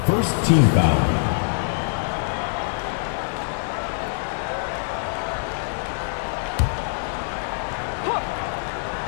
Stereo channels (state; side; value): silent; right; digital silence